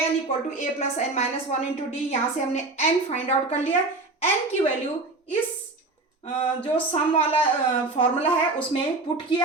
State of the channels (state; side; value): quieter; left; 3.3 dB